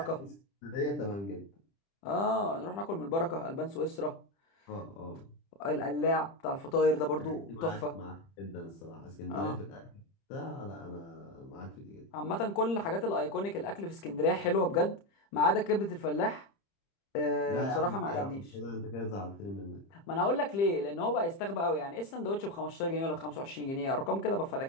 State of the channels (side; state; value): right; late; 30 ms